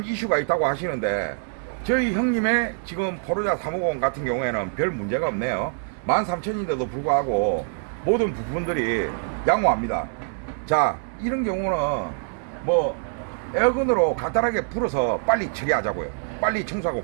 이슈가 있다고 하시는데, 저희 형님의 지금 포르자 350 같은 경우에는 별 문제가 없네요. 13,000인데도 불구하고 모든 부품들이 양호합니다. 자, 이런 경우는 뭐 에어건으로 간단하게 불어서 빨리 처리하자고요. 빨리 청소하고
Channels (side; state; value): left; silent; digital silence